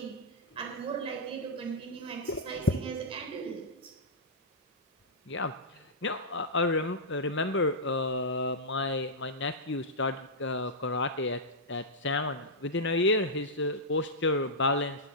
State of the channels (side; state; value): both; normal; correlation -0.11